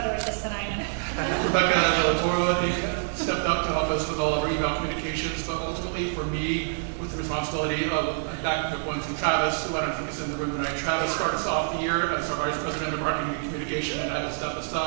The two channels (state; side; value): silent; left; digital silence